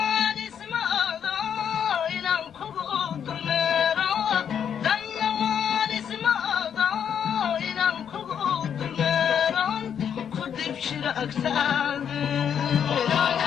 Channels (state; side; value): quieter; right; 8.3 dB